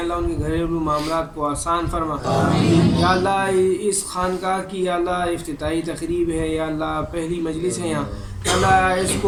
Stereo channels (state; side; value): identical; both; correlation 1.00